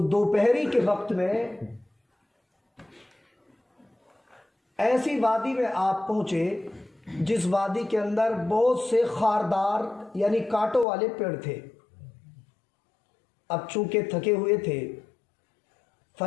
دوپہری کے وقت میں ایسی وادی میں آپ پہنچے جس وادی کے اندر بہت سے خاردار یعنی کانٹوں والے پیڑ تھے۔ اب چونکہ تھکے ہوئے تھے،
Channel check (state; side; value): drops out; right; at 10.9 s